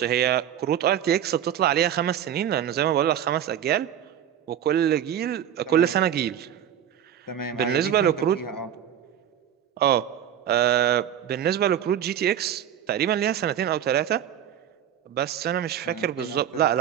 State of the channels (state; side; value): quieter; left; 10.1 dB